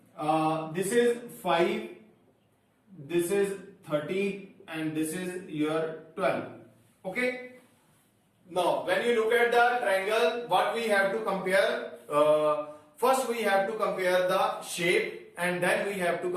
this is 5, this is 13 and this is your 12. Okay. Now when you look at the triangle, what we have to compare, first we have to compare the shape and then we have to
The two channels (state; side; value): identical; both; correlation 1.00